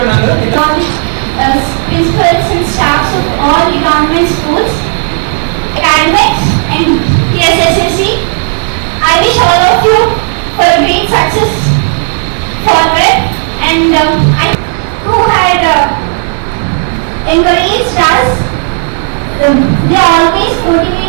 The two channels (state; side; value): silent; left; 56 dB below the other